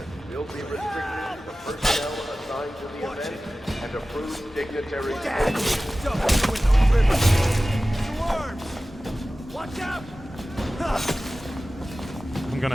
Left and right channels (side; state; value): both; normal; correlation 0.96